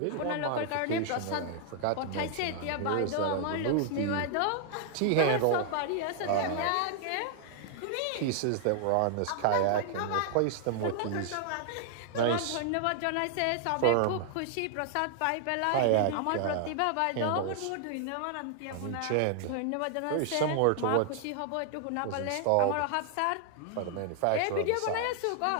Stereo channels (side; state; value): both; different; correlation 0.00